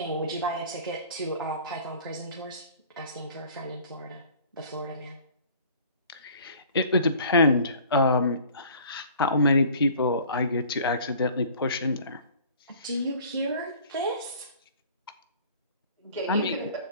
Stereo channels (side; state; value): both; inverted; correlation -0.49